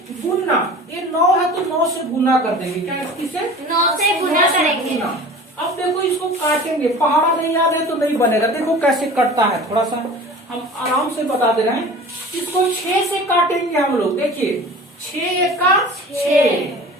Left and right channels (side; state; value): both; normal; correlation 0.40